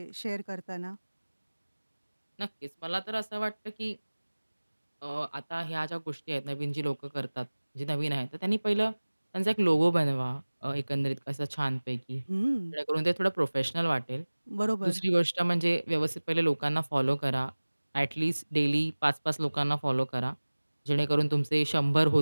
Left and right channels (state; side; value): inverted; both; correlation -1.00